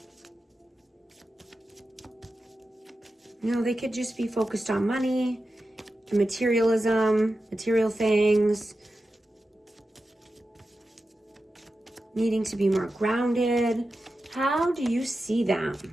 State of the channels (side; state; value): both; normal; correlation 0.92